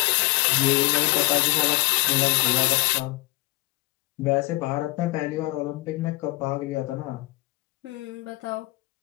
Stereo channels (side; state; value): right; quieter; 21.8 dB